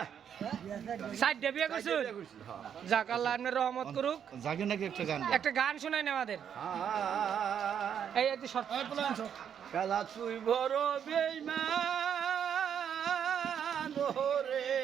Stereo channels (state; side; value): quieter; left; 8.4 dB